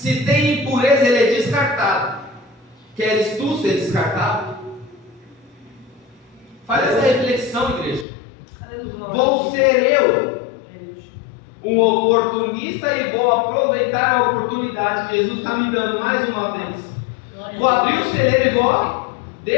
tem impureza, ele é descartado. Queres tu ser descartado? Faz essa reflexão, igreja. Aleluia. Vou ser eu um oportunista e vou aproveitar a oportunidade que Jesus está me dando mais uma vez. Vou abrir o celeiro e vou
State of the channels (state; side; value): drops out; right; at 8.1 s